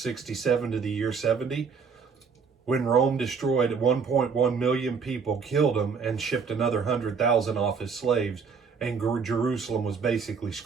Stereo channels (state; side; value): quieter; left; 5.7 dB